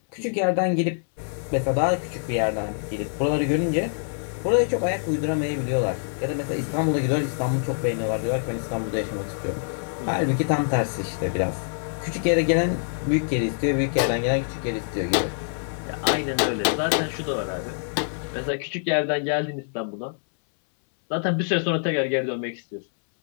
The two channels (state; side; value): silent; right; 62 dB below the other